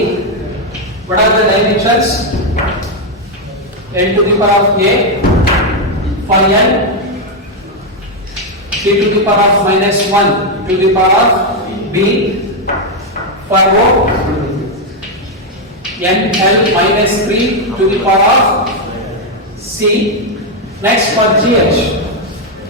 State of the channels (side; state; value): both; normal; correlation 0.02